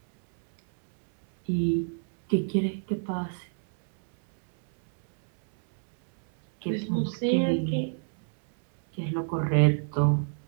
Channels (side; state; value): left; silent; 60 dB below the other